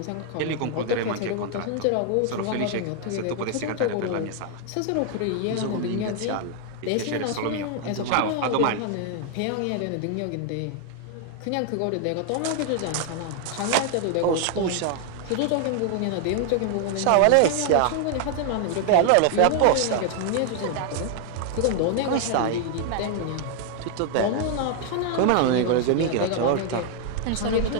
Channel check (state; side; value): different; both; correlation 0.00